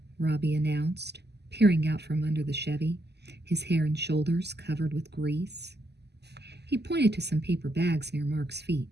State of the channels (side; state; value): left; late; 0.49 ms